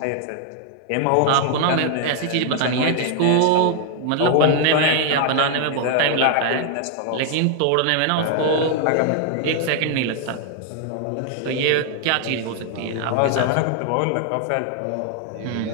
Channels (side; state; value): both; different; correlation 0.00